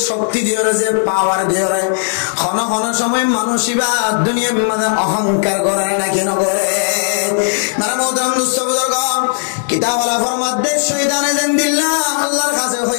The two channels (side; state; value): right; silent; 69 dB below the other